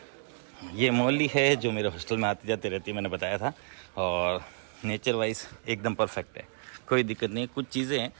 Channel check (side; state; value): left; silent; digital silence